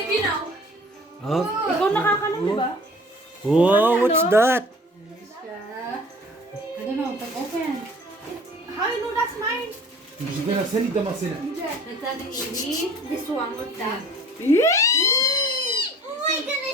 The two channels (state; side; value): normal; both; correlation 0.48